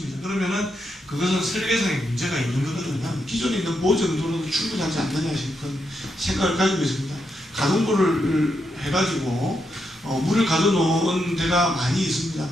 그러면은 그것은 설계상에 문제가 있는 거거든요. 기존에 있는 보 정도로도 충분하지 않느냐 싶은 생각을 가지고 있습니다. 가동부를 해가지고 물을 가둬놓은 데가 많이 있습니다.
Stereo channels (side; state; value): both; normal; correlation 0.82